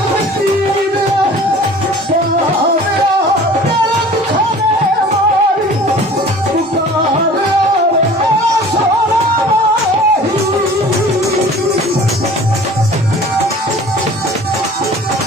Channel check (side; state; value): both; normal; correlation 0.45